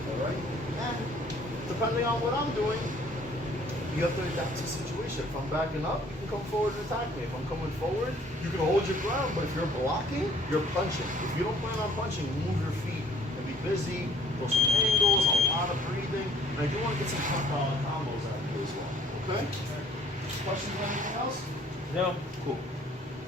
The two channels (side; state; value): both; normal; correlation 0.59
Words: All right. And depending on what I'm doing, you have to adapt to the situation. If I'm backing up, you can come forward and attack me. If I'm coming forward, you can hold your ground. But if you're blocking, you're punching. If you don't plan on punching, move your feet and be busy. Throw some angles, a lot of breathing. And I do want to get some combos out of you as well. Okay? Questions or anything else? No. Cool.